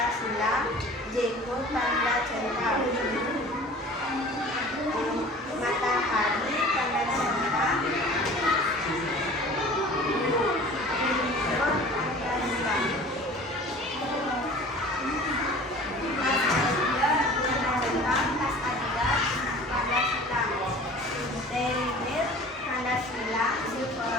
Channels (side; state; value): both; normal; correlation 0.44